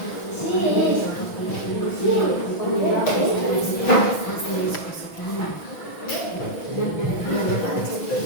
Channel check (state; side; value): late; right; 6.1 ms